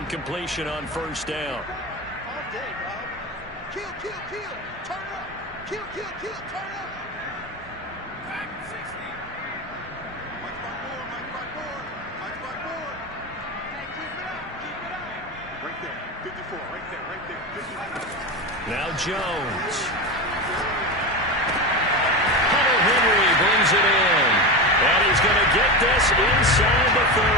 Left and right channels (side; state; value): both; normal; correlation 0.20